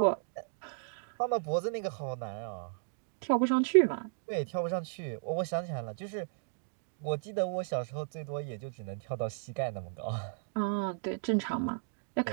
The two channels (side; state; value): left; silent; digital silence